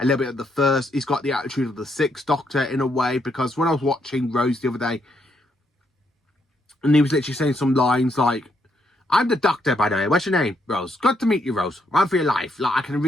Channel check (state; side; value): normal; both; correlation 0.76